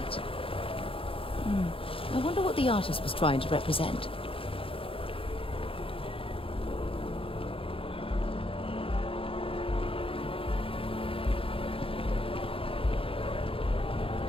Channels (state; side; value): late; right; 0.26 ms